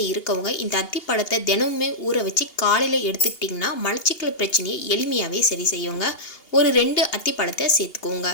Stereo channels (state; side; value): late; right; 2.8 ms